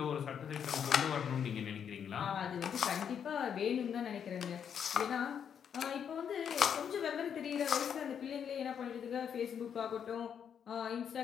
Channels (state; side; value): quieter; right; 8.0 dB